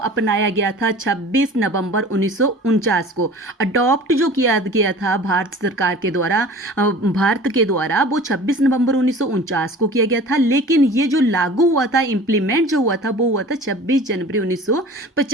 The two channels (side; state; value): both; normal; correlation 0.42